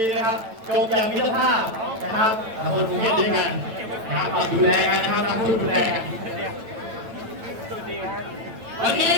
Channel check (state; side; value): late; left; 9.0 ms